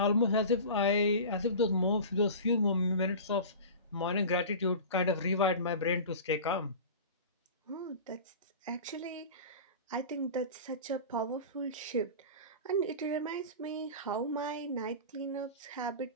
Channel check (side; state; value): both; inverted; correlation -0.33